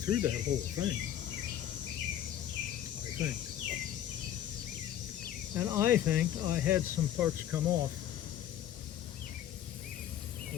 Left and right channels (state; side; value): quieter; right; 11.3 dB